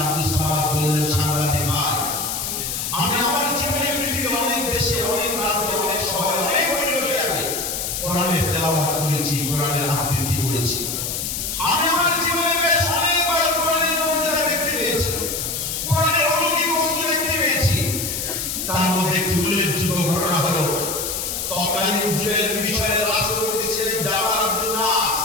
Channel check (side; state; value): left; noise; hiss, 3 dB below the sound